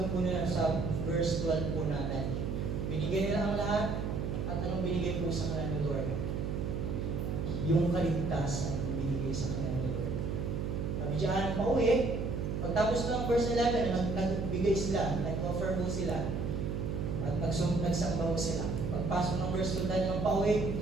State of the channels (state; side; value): noise; right; hum, 2 dB below the sound